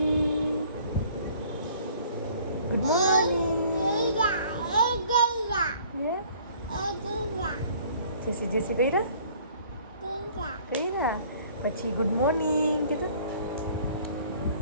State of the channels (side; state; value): both; inverted; correlation -0.54